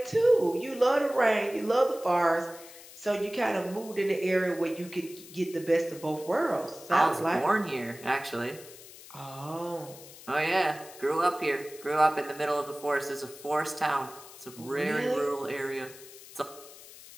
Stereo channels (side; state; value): left; noise; hiss, 18 dB below the sound